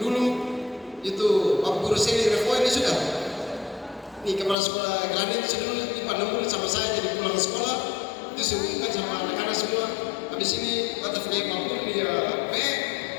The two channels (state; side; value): drops out; right; at 4.5 s